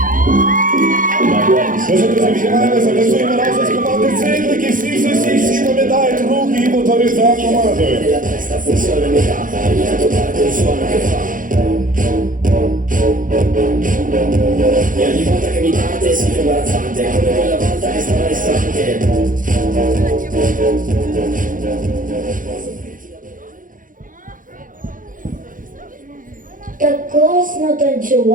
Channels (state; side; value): late; left; 0.39 ms